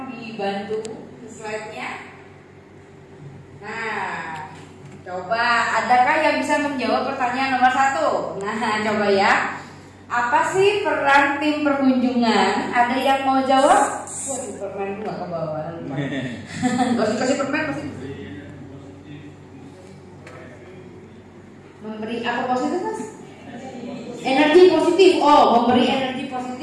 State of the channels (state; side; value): identical; both; correlation 1.00